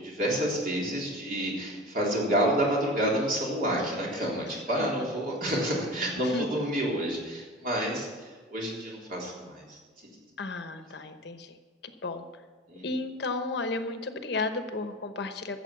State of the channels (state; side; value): normal; both; correlation 0.35